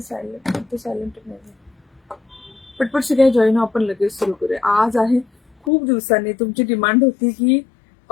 नाही. पटपट सगळ्या जॉईन आपण लगेच सुरू करूया. आज आहे खूप दिवसांनी तुमची डिमांड होती की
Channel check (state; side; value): drops out; right; at 5.7 s